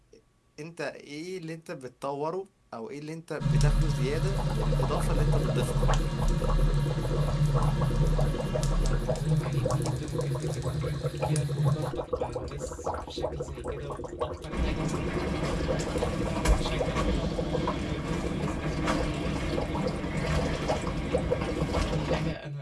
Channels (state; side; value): identical; both; correlation 1.00